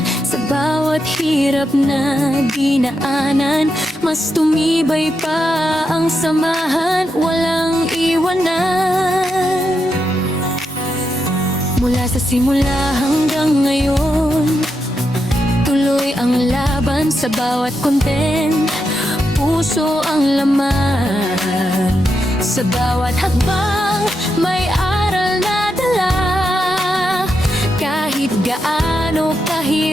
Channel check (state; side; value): normal; both; correlation 0.84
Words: sa bawat hirap na dinaanan, mas tumibay pa ang samahan, walang iwanan. Mula sa simula hanggang ngayon, tuloy ang laban sa bawat content. Puso ang laman, sa bawat hakbang may aral na dala. Kahit gaano